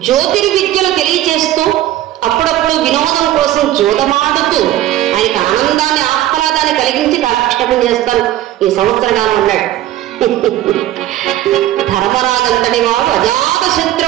జ్యోతిర్విద్యలు తెలియచేస్తూ అప్పుడప్పుడు వినోదం కోసం జోదమాడుతూ ఆయనకు ఆనందాన్ని, ఆహ్లాదాన్ని కలిగించి కాలక్షేపం చేస్తాను ఈ సంవత్సర కాలం అన్నాడు. ధర్మరాజంతటి వాడు అజాత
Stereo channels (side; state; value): left; quieter; 13.8 dB